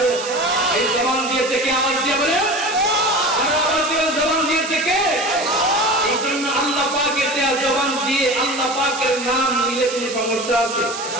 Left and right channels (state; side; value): noise; right; hiss, 9 dB below the sound